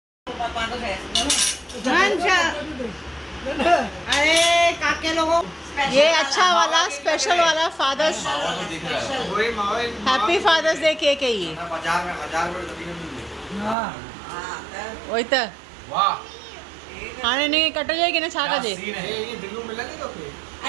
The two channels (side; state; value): left; drops out; at 13.8 s